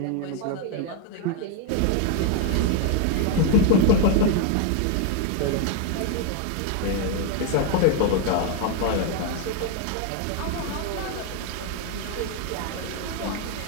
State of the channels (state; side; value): different; both; correlation 0.01